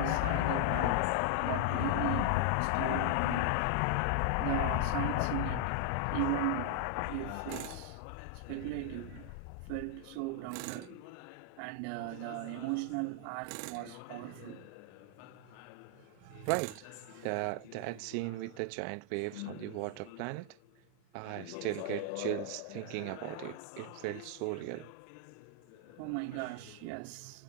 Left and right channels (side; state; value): both; different; correlation -0.01